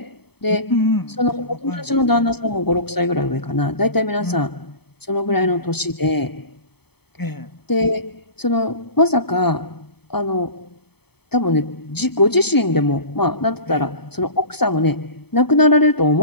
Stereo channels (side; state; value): right; late; 0.97 ms